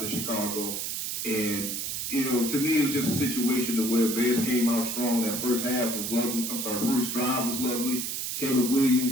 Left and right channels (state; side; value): noise; right; hiss, 3 dB below the sound